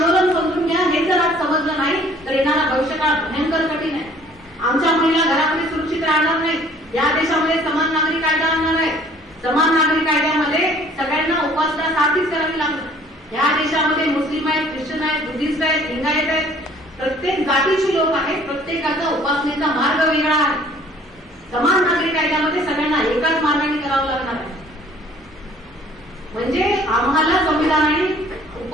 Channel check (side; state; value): both; normal; correlation 0.55